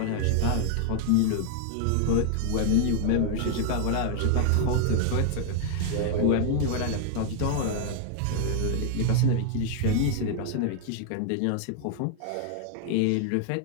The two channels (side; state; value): both; different; correlation 0.00